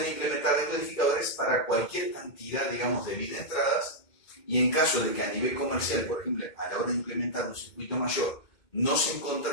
implementar decodificadores para cualquier cantidad, digamos, de bits de entradas, y en caso de que a nivel comercial, por ejemplo, a la hora de implementar un circuito mayor, no se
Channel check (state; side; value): late; right; 2.2 ms